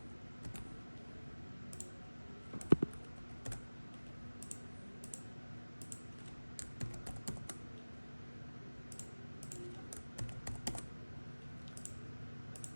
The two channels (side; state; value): both; inverted; correlation -1.00